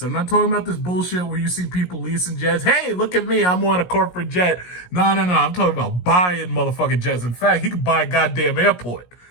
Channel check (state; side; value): late; right; 17 ms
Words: I'm not talking about this bullshit where you see people leasing jets. Hey, look at me. I'm on a corporate jet. No. I'm talking about buying motherfucking jets. In fact, he could buy a goddamn airport.